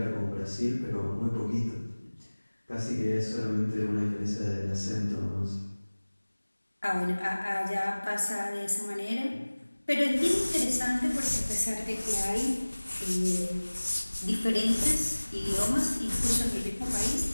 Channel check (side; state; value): both; inverted; correlation -1.00